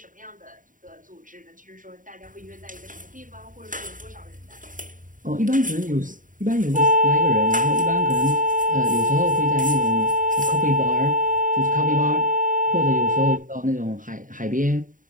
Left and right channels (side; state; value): left; late; 0.39 ms